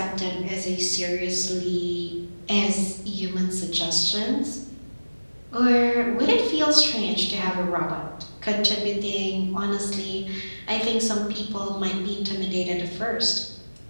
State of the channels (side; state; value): both; inverted; correlation -1.00